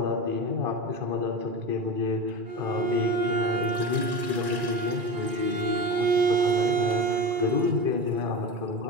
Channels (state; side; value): late; left; 2.4 ms